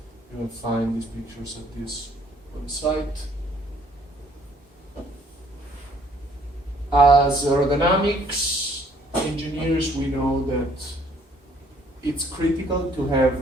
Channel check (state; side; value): normal; both; correlation 0.62